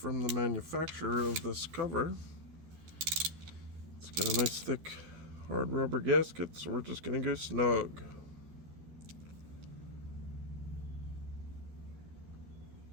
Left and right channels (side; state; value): left; late; 12 ms